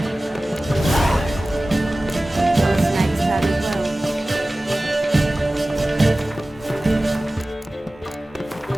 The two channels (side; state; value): both; normal; correlation 0.97